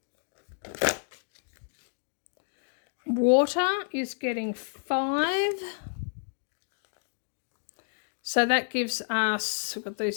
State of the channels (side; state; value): right; silent; digital silence